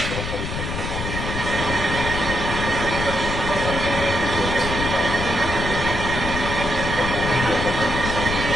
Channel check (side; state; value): left; noise; rumble, 4 dB below the sound